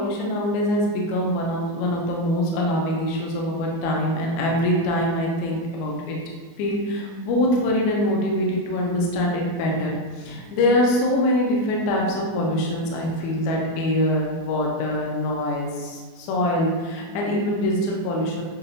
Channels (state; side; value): late; right; 24 ms